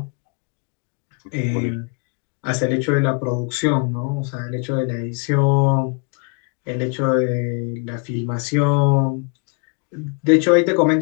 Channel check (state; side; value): quieter; right; 32.4 dB